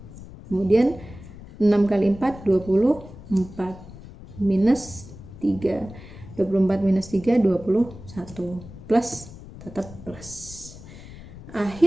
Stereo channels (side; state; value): left; noise; rumble, 16 dB below the sound